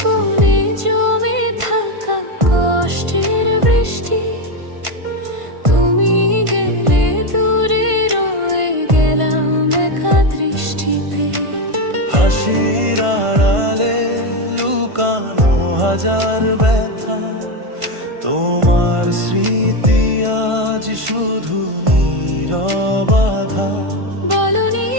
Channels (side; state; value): left; late; 1.5 ms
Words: কোণে জমে থাকা কষ্টের বৃষ্টি, তুমি গেলে দূরে রয়ে গেলাম একা দৃষ্টিতে। হাসির আড়ালে লুকানো হাজার ব্যথা, তোমার স্মৃতি আজ শুধু নীরব আঘাত। বলনি